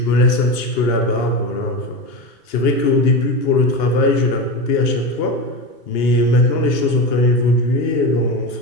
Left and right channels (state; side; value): late; right; 2.8 ms